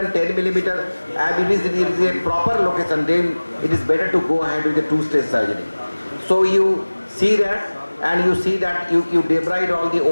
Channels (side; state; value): both; inverted; correlation -1.00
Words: 10 millimeter, and it is a proper location, then it is better to go ahead with the two-stage surgery. So you see that, and you see that you debride all the